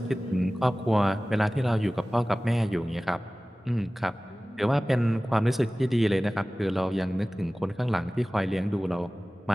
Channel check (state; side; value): normal; both; correlation 0.97